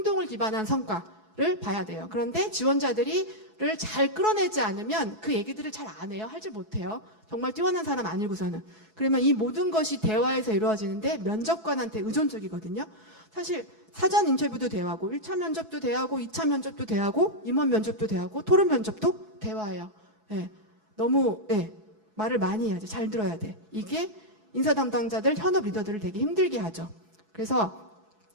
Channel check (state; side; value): late; left; 6.0 ms